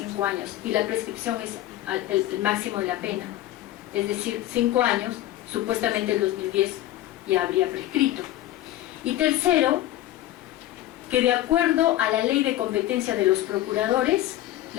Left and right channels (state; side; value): quieter; right; 14.6 dB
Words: años y la prescripción es el máximo de la pena. Es decir, 5 años, supuestamente el 2010 ya habría prescrito. Y tercero, que de acuerdo a la ley de competencia de los procuradores,